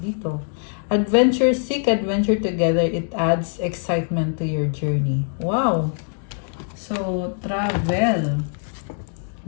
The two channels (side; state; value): right; silent; digital silence